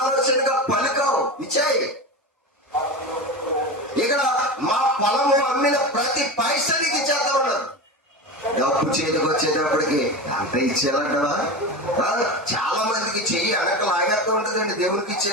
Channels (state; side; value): normal; both; correlation 0.24